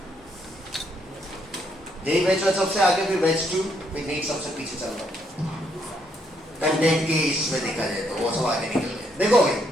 यही बैच सबसे आगे, फिर बैच 2, फिर नीट सबसे पीछे चल रहा है। कंटेंट की इसमें देखा जाए तो वो सब आगे निकल गए। देखो भाई,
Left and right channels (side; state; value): both; normal; correlation 0.73